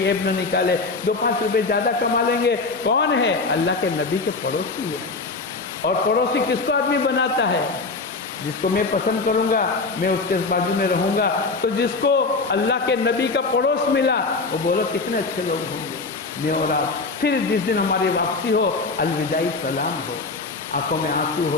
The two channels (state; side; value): quieter; right; 3.9 dB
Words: ऐब न निकाले, 2-5 रुपये ज़्यादा कमा लेंगे। कौन है? अल्लाह के नबी के पड़ोसी है। और पड़ोसी किसको आदमी बनाता है? जिसको मैं पसंद करूंगा, मैं उसके बाजू में रहूंगा। तो जिसको अल्लाह के नबी का पड़ोस मिला, वो बोलो कितने अच्छे लोग होंगे, मैं और आप। फिर जिस दिन हमारी वापसी हो, अलविदाई सलाम हो, आंखों में आंसू